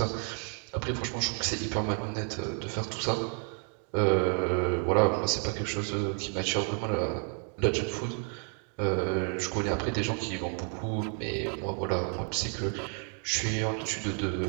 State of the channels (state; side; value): quieter; left; 38.9 dB